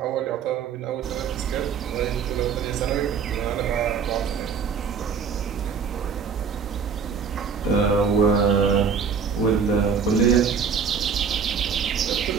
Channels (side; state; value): left; quieter; 6.2 dB